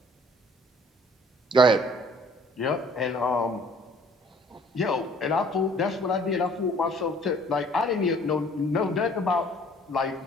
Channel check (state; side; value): normal; both; correlation 0.55